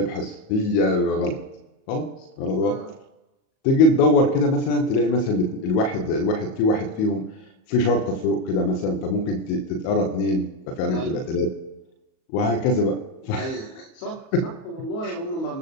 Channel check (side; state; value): right; late; 38 ms